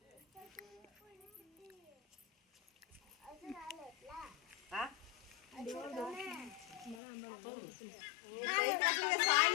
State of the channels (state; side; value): drops out; right; at 7.0 s